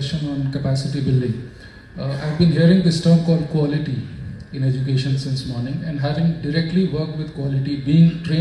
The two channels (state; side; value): identical; both; correlation 1.00